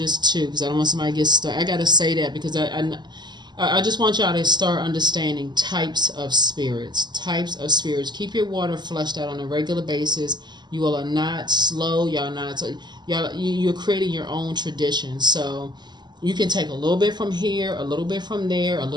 two, because I don't want somebody to get stuck. I gotta say that because I just want y'all to start understanding types of spirits. Types of spirits. Keep your water flushed out on a regular basis. You all are not slow. Y'all not. You're creating your own tradition. So you can take a little bit from here, a little bit from there, a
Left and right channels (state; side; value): late; left; 0.21 ms